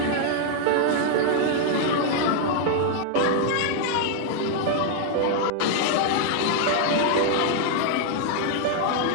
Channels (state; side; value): different; both; correlation 0.00